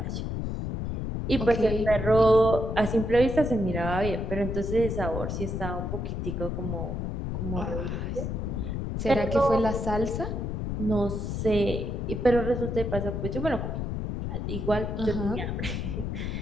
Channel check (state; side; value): noise; left; rumble, 3 dB below the sound